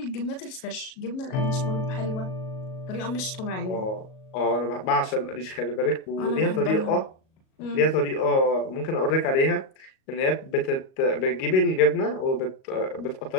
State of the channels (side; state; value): right; late; 37 ms